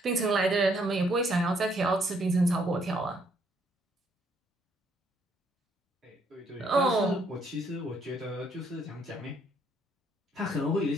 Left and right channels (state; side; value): normal; both; correlation 0.69